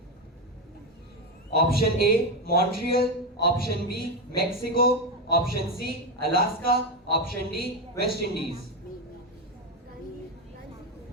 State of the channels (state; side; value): normal; both; correlation 0.11